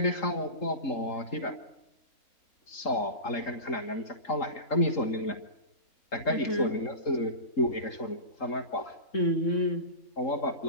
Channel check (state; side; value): late; right; 3.8 ms